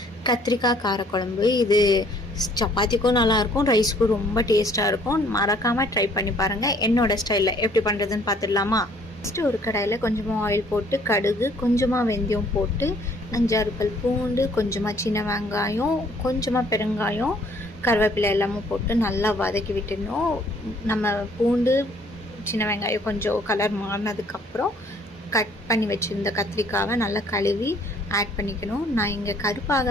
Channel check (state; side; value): normal; both; correlation 0.60